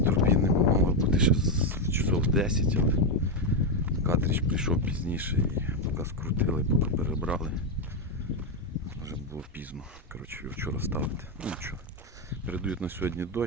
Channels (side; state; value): both; normal; correlation 0.06